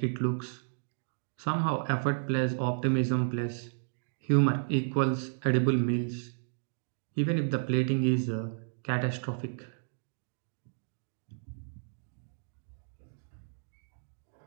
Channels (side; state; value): left; silent; digital silence